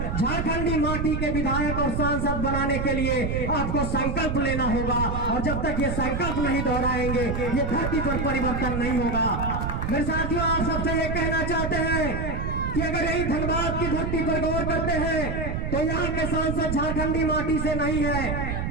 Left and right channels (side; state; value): right; noise; rumble, 2 dB below the sound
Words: झारखंडी माटी के विधायक और सांसद बनाने के लिए आपको संकल्प लेना होगा। और जब तक ये संकल्प नहीं दोहराएंगे, ये धरती पर परिवर्तन नहीं होगा। मेरे साथियों, आप सबसे ये कहना चाहते हैं कि अगर यही धनबाद की धरती पर गौर करते हैं तो यहाँ के सांसद झारखंडी माटी से नहीं है।